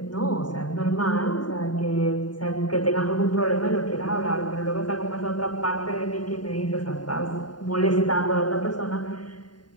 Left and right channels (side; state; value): right; late; 0.70 ms